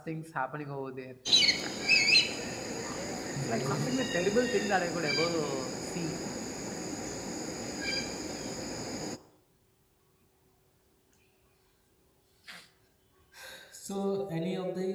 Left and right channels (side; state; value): both; identical; correlation 1.00